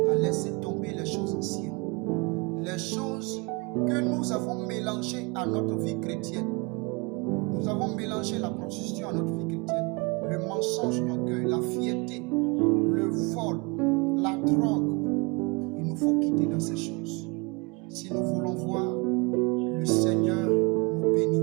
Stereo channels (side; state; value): left; quieter; 28.9 dB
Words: à laisser tomber les choses anciennes. Les choses que nous avons mélangées à notre vie chrétienne. Nous avons mélangé la prostitution à notre vie chrétienne. Le mensonge, l'orgueil, la fierté, le vol, la drogue. Il nous faut quitter dans ces choses. Si nous voulons voir le Seigneur nous bénir.